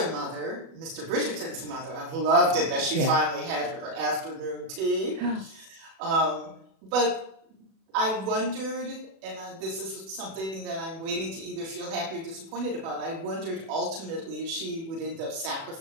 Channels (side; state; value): left; late; 36 ms